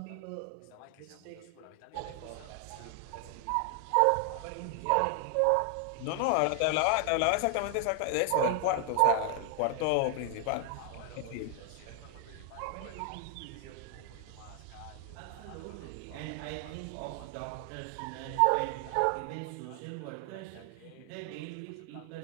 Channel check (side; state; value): both; different; correlation 0.00